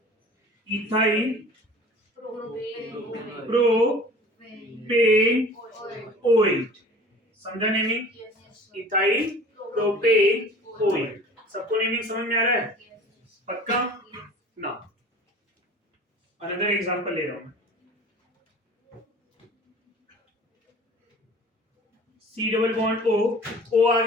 इथाइल प्रोपेन ऑयल, समझा नेमिंग, इथाइल प्रोपेन ऑयल। सबको नेमिंग समझ में आ रहा है, पक्का ना। अनदर एग्जांपल ले रहा हूं, सी डबल बॉन्ड ओ आ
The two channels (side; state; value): both; normal; correlation 0.44